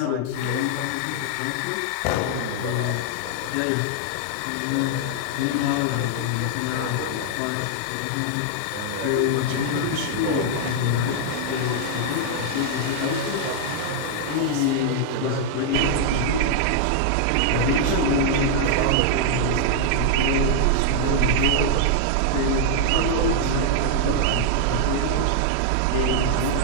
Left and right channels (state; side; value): different; both; correlation 0.00